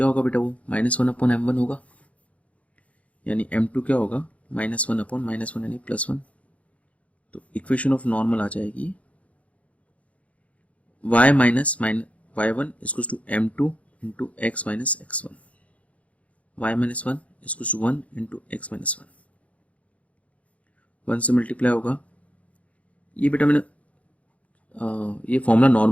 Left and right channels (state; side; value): late; right; 0.066 ms